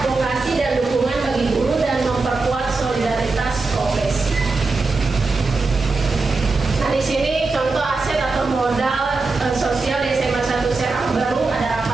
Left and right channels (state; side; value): quieter; left; 3.8 dB